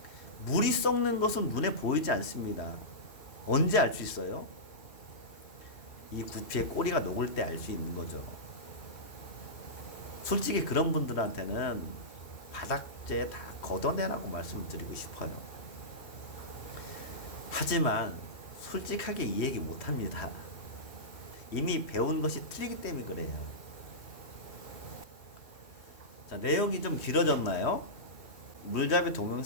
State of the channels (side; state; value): right; late; 3.1 ms